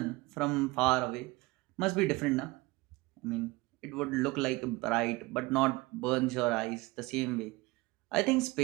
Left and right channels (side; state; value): left; quieter; 22.4 dB